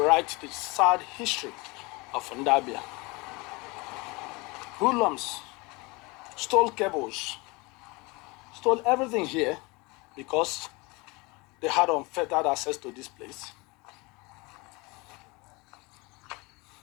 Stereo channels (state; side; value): quieter; right; 25.7 dB